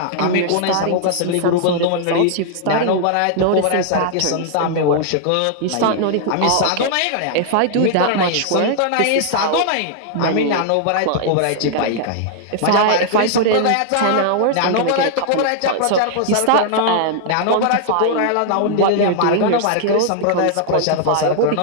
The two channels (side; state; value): both; different; correlation -0.01